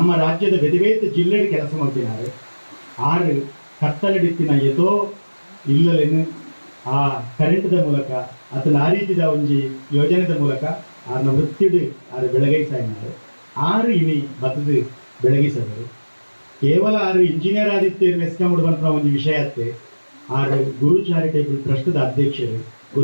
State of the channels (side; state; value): both; inverted; correlation -1.00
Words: ರಾಜ್ಯದ ಬೇತೆ ಜಿಲ್ಲೆಗೆ ಕೆಲಸ ಮಾಡ್ತಿನಾರು ಆರು ಕತ್ತಲೆಡಿತ್ತಿನ ಎದೋ ಇಲ್ಲಲೇನು ಆ ಕರೆಂಟ್ದ ಮೂಲಕ ಅತನ ಆ ರೀತಿದ ಒಂಜಿ ಯೋಜನೆದ ಮೂಲಕ ಆರ್ನ ವೃತ್ತಿಡ್ ಆರು ಬೆಳಗೈಸಾಯಿನಾರು 6 ಇನಿ ಬತ್ತದು ಬೆಳಗಿಸದರು ಕೇವಲ 6 ಇಂಜಿನಿಯರ್ ಆದಿತ್ಯರು ಮೆಸ್ಕೊಂಬಿಡು ಬಂತ ಒಂದು ವಿಷಯ ಅತ್ತೆ 6 ಗುರು ಚಾರಿಟೇಬಲ್ ಟ್ರಸ್ಟ್ದ ಅಧ್ಯಕ್ಷರು